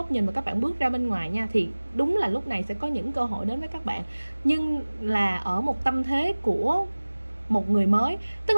nhìn và các bạn bước ra bên ngoài nha, thì đúng là lúc này sẽ có những cơ hội đến với các bạn, nhưng là ở một tâm thế của một người mới. Tức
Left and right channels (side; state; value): both; inverted; correlation -1.00